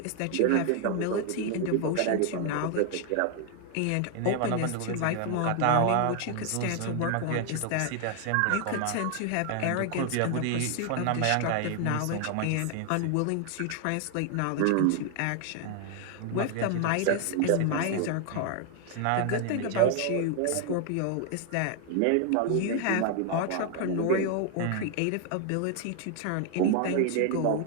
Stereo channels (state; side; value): different; both; correlation 0.00